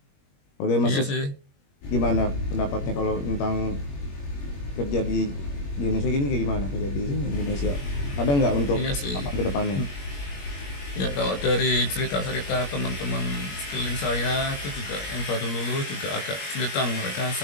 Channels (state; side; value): late; right; 21 ms